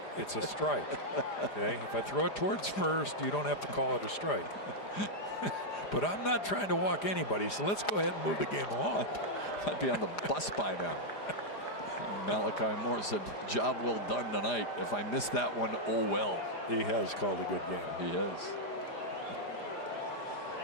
it's a strike. Okay? If I throw it towards first, you don't have to call it a strike. But I'm not trying to walk anybody, so let's go ahead and move the game along. I'd be on the bus by now. Malachi Moore said, job well done tonight. If I missed that one, oh well. He has called a good game. He has.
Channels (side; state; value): right; late; 4.9 ms